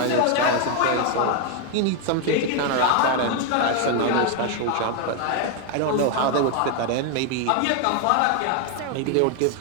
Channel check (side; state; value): both; different; correlation 0.00